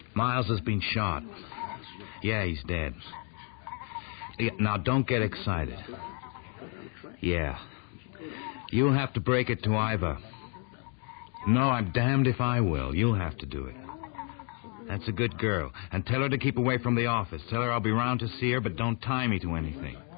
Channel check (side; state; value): right; quieter; 35.5 dB